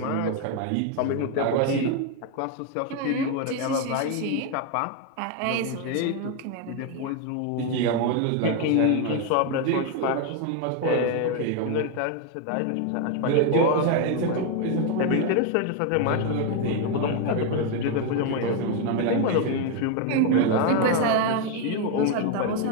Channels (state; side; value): different; both; correlation 0.01